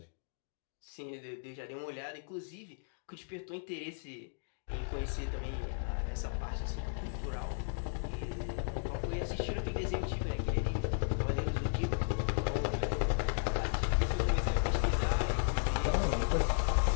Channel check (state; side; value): silent; right; digital silence